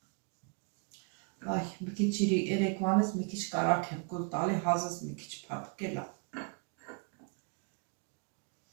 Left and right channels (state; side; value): quieter; left; 37.0 dB